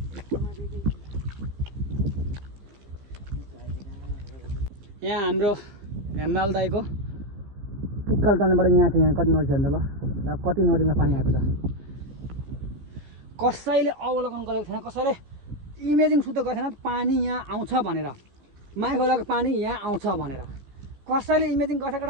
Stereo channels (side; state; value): left; late; 15 ms